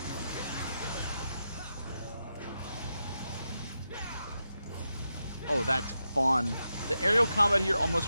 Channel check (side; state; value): both; inverted; correlation -0.87